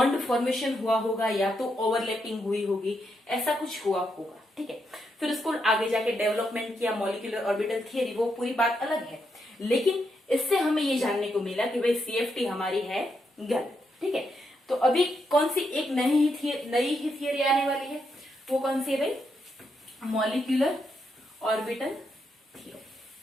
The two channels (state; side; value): normal; both; correlation 0.81